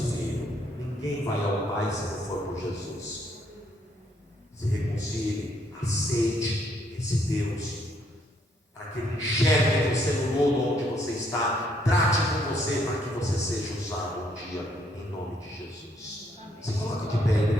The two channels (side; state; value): both; normal; correlation 0.70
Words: Filho. Ninguém vai ao Pai se não for por Jesus. Se reconcilie, aceite esse Deus, para que Ele enxergue você no lodo onde você está, trate com você para que você seja usado um dia, em nome de Jesus. Se coloque de pé,